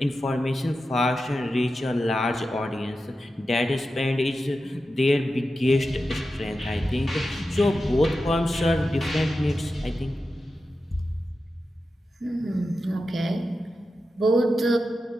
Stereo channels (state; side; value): normal; both; correlation 0.91